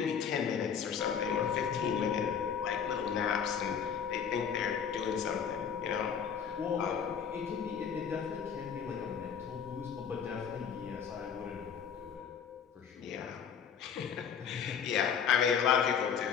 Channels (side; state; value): right; quieter; 7.4 dB